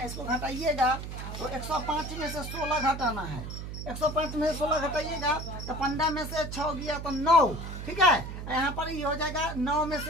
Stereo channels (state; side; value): noise; right; hum, 8 dB below the sound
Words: इसको घटाइएगा तो 105 में से 16 घटाना है, 105 में से 16 घटाइएगा तो 15 में से 6 गया तो 9। ठीक है, यहाँ पर ये हो जाएगा 9 में